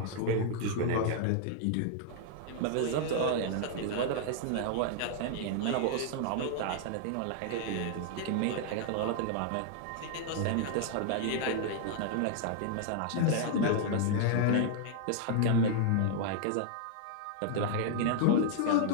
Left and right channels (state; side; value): different; both; correlation -0.01